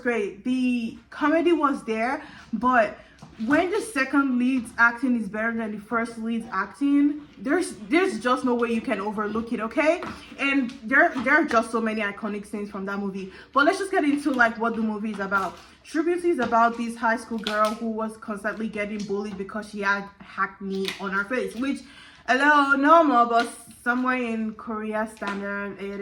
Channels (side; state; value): both; identical; correlation 1.00